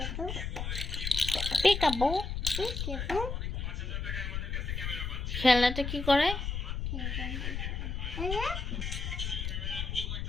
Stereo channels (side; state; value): left; noise; rumble, 3 dB below the sound